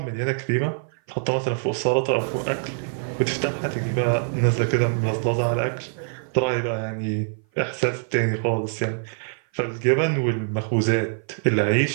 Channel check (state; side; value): silent; left; 56 dB below the other